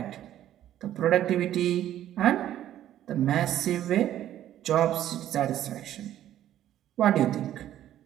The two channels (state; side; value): quieter; left; 12.1 dB